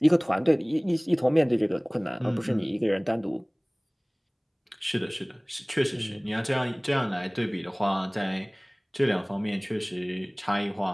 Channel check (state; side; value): identical; both; correlation 1.00